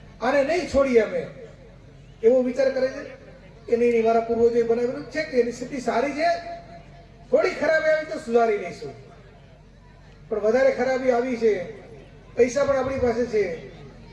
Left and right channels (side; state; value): both; identical; correlation 1.00